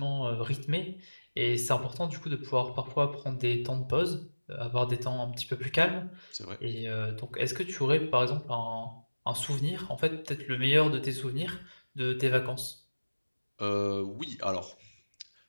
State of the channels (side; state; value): both; inverted; correlation -1.00